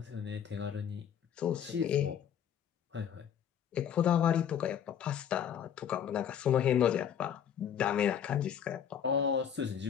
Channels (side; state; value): right; quieter; 8.7 dB